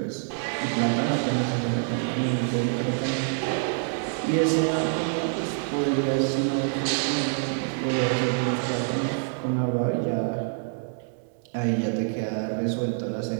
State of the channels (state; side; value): silent; left; 61 dB below the other